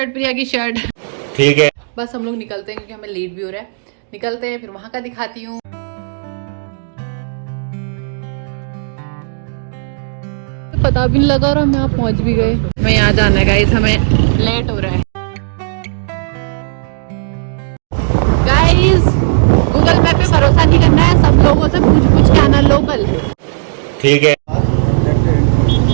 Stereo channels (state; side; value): silent; left; digital silence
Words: प्रिया की शर्ट। ठीक है, बस हम लोग निकलते हैं क्योंकि हमें लेट भी हो रहा है। निकलते हैं, फिर वहां का दिखाती हूँ। पता भी नहीं लगा और हम यहाँ पहुंच भी गए। मैं यहाँ जाना है गाइस, हमें लेट हो रहा है। गाइस गूगल मैप पे भरोसा नहीं करना है, सब लोगों से पूछ के आना लोकल। ठीक है,